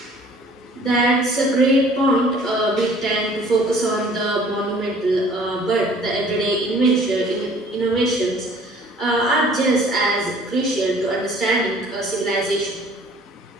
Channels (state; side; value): normal; both; correlation 0.53